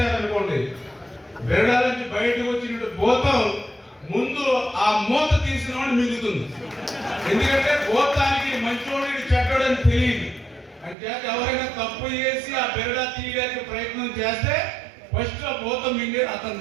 బెరడా నుంచి బయటకు వచ్చినట్టు భూతం ముందు ఆ మూత తీసిన వాడు మిగులుతుంది. ఎందుకంటే భూతానికి మంచోడు చెడ్డోడని తెలియదు. అంటే ఎవరైనా తప్పు చేసి ఆ బెరడా తీయడానికి ప్రయత్నం చేస్తే ఫస్ట్ ఆ భూతం మింగేది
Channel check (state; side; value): drops out; left; at 11.0 s